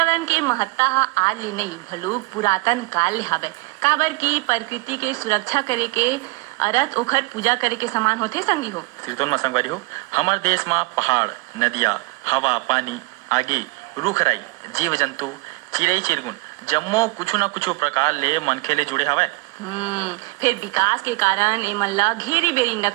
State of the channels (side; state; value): left; quieter; 24.4 dB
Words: के महत्ता हा आज ले नहीं भलू पुरातन काल ले हावे काबर की प्रकृति के सुरक्षा करे के अरथ ओखर पूजा करे के समान होथे संगी हो। सिरतोन में संगवारी हो हमार देश में पहाड़ नदिया हवा पानी आगे रूख राई जीव जंतु चिड़ई चिरगुन जम्मो कुछ न कुछ प्रकार ले मनखे ले जुड़े हवे। फिर विकास के कारण एमन ला घेरी बेरी